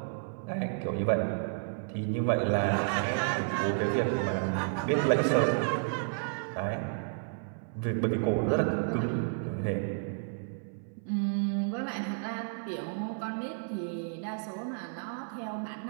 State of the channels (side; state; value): left; silent; 57 dB below the other